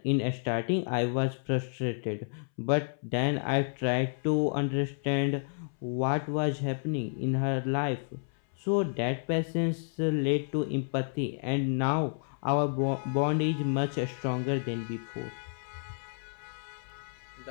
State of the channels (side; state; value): right; silent; 57 dB below the other